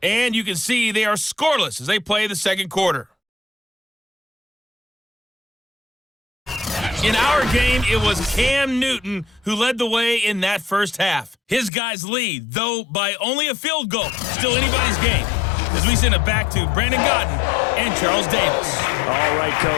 And you can see they are scoreless as they play the second quarter. In our game, it was Cam Newton who led the way in that first half. His guys lead, though by only a field goal. Still anybody's game. As we send it back to Brandon Godden and Charles Davis. All right,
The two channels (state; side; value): drops out; right; at 11.7 s